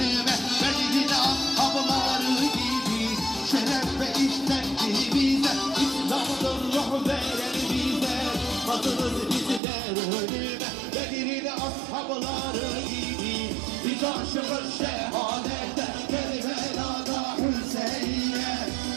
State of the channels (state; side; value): drops out; left; at 9.6 s